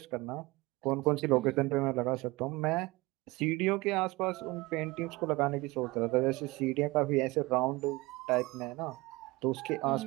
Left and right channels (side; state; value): left; quieter; 22.1 dB